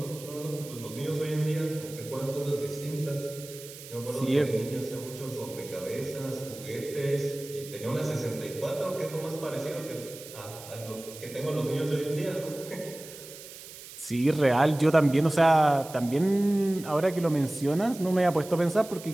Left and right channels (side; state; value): right; noise; hiss, 15 dB below the sound